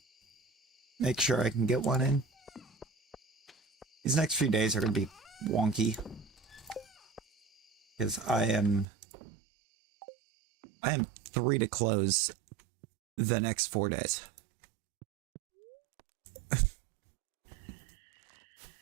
make sure I can get one in. These next few days are going to be wonky. Because I am 3 to close the next 4 days.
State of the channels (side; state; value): left; drops out; at 8.8 s